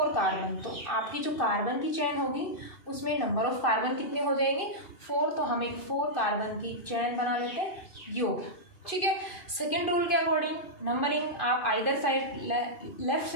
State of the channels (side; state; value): right; late; 2.5 ms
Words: कार्बन, तो आपकी जो कार्बन की चेन होगी उसमें नंबर ऑफ कार्बन कितने हो जाएंगे 4, तो हम एक 4 कार्बन की चेन बना लेते हैं, योग। ठीक है। सेकेंड रूल के अकॉर्डिंग नंबरिंग आप आइदर साइड लेफ्ट